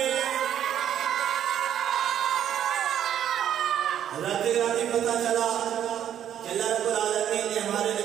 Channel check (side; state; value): left; quieter; 10.2 dB